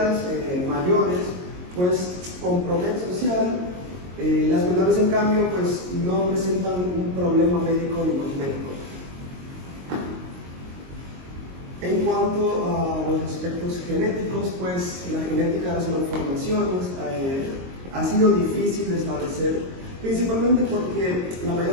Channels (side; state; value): left; late; 22 ms